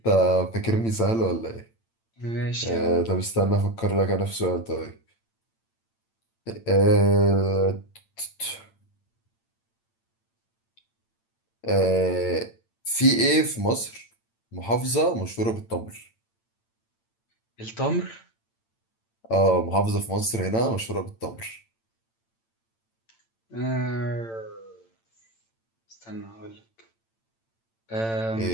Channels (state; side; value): late; right; 8.9 ms